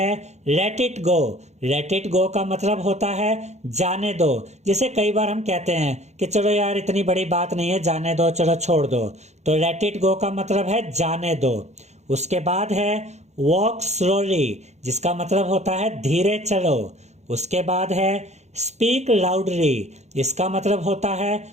let it go. Let it go का मतलब होता है जाने दो। जैसे कई बार हम कहते हैं कि चलो यार इतनी बड़ी बात नहीं है, जाने दो, चलो छोड़ दो। तो लेट इट गो का मतलब है जाने दो। उसके बाद है वॉक स्लोली, जिसका मतलब होता है धीरे चलो। उसके बाद है स्पीक लाउडली, इसका मतलब होता है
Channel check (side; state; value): left; late; 0.33 ms